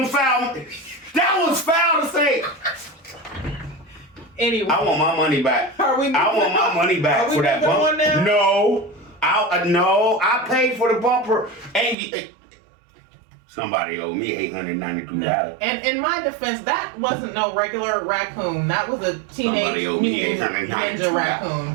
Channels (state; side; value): drops out; left; at 12.0 s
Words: foul. That was foul to say. Anyway. I want my money back. I want my money back for that bumper. Now? No. I paid for the bumper. And somebody owed me $892. And in my defense, that wasn't no regular raccoon. That was a teenage ninja